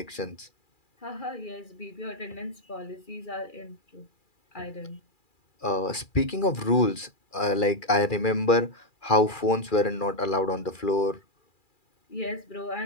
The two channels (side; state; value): right; late; 2.4 ms